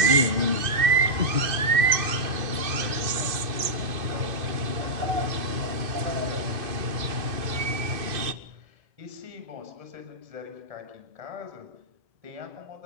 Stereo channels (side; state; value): left; late; 2.5 ms